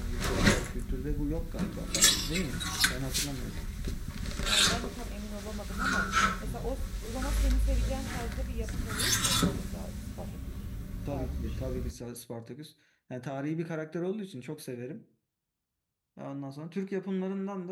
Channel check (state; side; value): identical; both; correlation 1.00